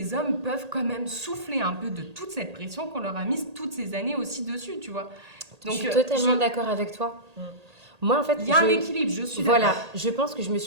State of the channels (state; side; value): late; left; 1.8 ms